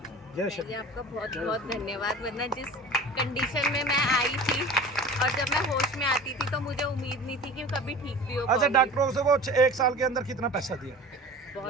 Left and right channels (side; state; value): both; normal; correlation 0.39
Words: है। जय श्री जी आपका बहुत बहुत धन्यवाद। वरना जिस कंडीशन में मैं आई थी और जब मैं होश में आती थी तो मुझे उम्मीद नहीं थी कि कभी ठीक भी हो अच्छा, पाऊंगी। डॉक्टरों से वो 1 साल के अंदर कितना पैसा दिया? बहुत